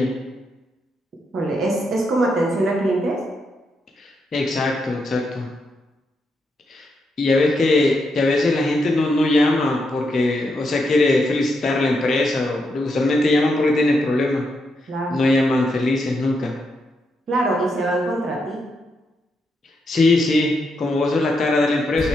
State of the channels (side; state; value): both; normal; correlation 0.82